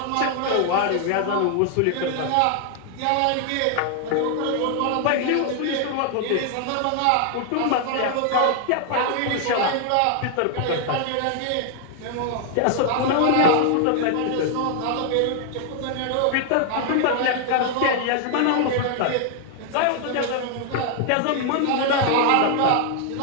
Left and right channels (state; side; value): different; both; correlation 0.00